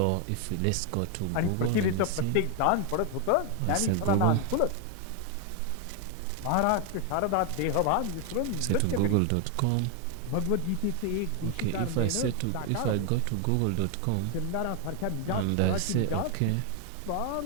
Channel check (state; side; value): different; both; correlation 0.00